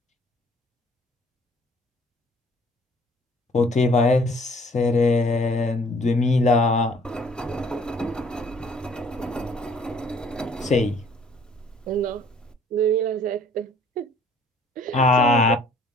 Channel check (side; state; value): both; normal; correlation 0.56